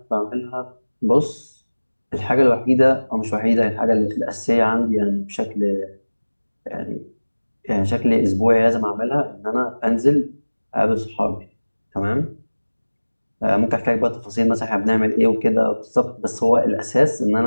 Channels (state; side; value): inverted; both; correlation -1.00